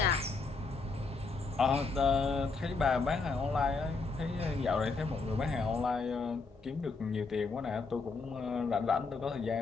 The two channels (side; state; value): right; quieter; 4.1 dB